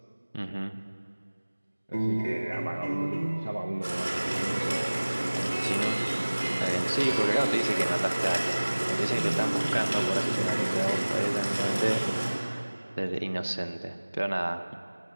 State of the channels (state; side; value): inverted; both; correlation -1.00